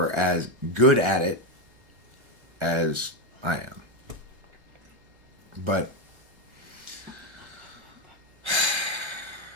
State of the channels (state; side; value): late; left; 1.0 ms